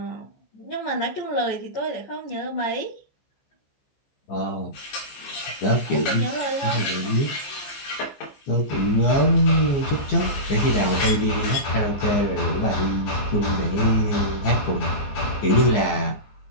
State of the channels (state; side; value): late; right; 15 ms